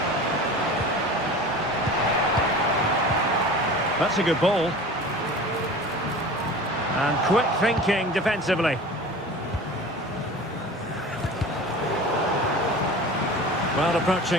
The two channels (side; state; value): both; normal; correlation 0.37